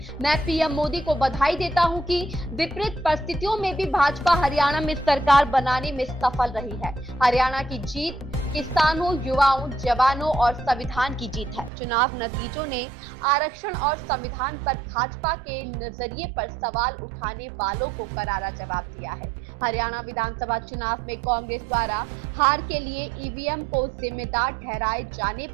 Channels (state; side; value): drops out; left; at 11.7 s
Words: मैं पीएम मोदी को बधाई देता हूं कि विपरीत परिस्थितियों में भी भाजपा हरियाणा में सरकार बनाने में सफल रही है। हरियाणा की जीत किसानों, युवाओं, जवानों और संविधान की जीत है। चुनाव नतीजों ने आरक्षण और संविधान पर भाजपा के नजरिए पर सवाल उठाने वालों को करारा जवाब दिया है। हरियाणा विधानसभा चुनाव में कांग्रेस द्वारा हार के लिए ईवीएम को जिम्मेदार ठहराए जाने